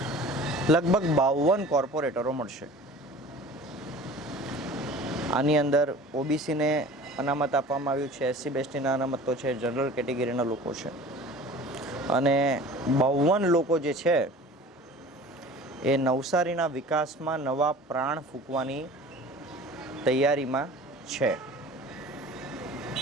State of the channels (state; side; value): normal; both; correlation 0.42